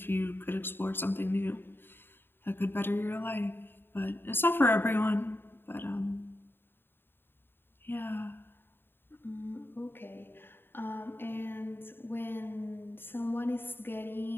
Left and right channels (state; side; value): late; right; 0.10 ms